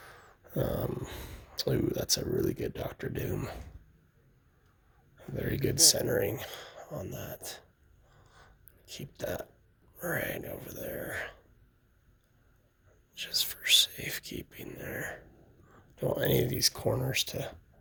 Ooh, that's a really good Dr. Doom. Very good centering on that. Keep that right over there. Just for safekeeping there. Don't want any of these corners to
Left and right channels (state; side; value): identical; both; correlation 1.00